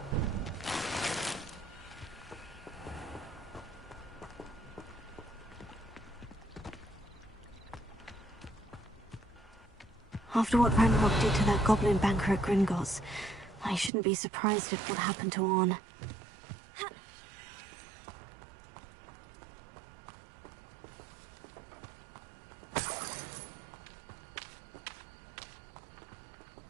After what Ranrock did to that goblin banker at Gringotts, I shouldn't be surprised at what happened to Orn.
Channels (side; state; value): left; drops out; at 13.9 s